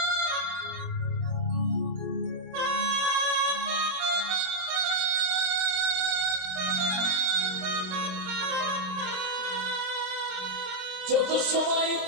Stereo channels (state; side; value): late; left; 27 ms